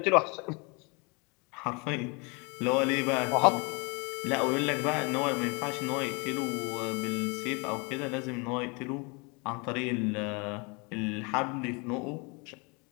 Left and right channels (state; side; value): quieter; right; 30.4 dB